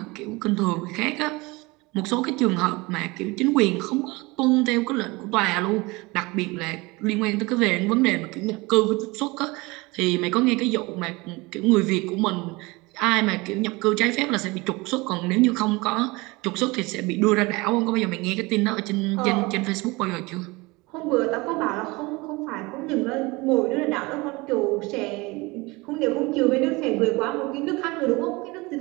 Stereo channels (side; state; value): left; quieter; 23.9 dB